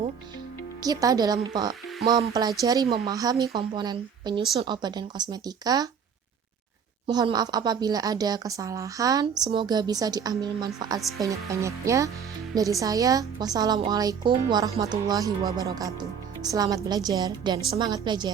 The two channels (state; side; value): quieter; left; 7.2 dB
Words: kita dalam mempelajari memahami komponen penyusun obat dan kosmetika. Mohon maaf apabila ada kesalahan. Semoga bisa diambil manfaat sebanyak-banyaknya. Dari saya, wassalamualaikum warahmatullahi wabarakatuh. Selamat belajar dan semangat